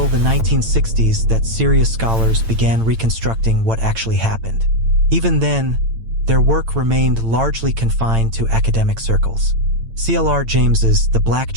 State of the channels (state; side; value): late; left; 8.9 ms